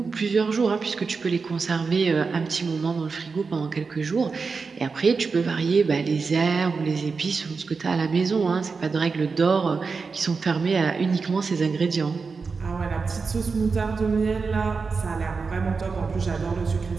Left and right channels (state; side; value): quieter; left; 4.8 dB